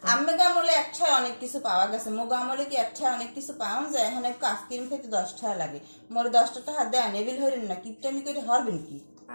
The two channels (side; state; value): both; inverted; correlation -1.00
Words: আম্মে গামলে একটায় অনেক কিছু পাওয়া গেছে, মোগো আমলে কি একটায় অনেক কিছু পাওয়া যায়? এখানে একটু আইসক্রিম খেতে 10 টাকা লাগে। মোরে 10টা টাকা দেন, এবিল হইলেন না, কিপটামি করে হরবেন কি?